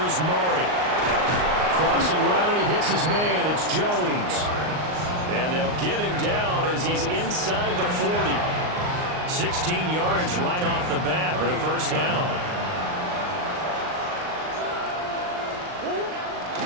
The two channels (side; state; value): left; late; 39 ms